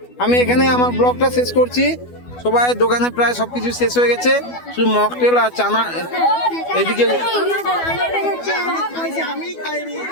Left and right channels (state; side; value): late; right; 12 ms